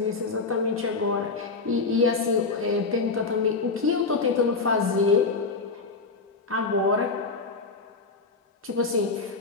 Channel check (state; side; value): quieter; right; 4.1 dB